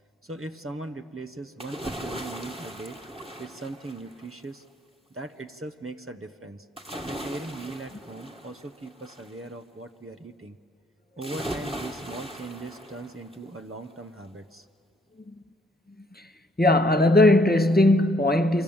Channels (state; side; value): normal; both; correlation 0.67